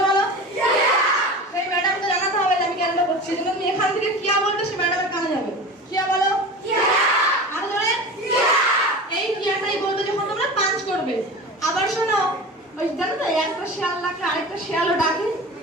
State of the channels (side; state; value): both; normal; correlation 0.33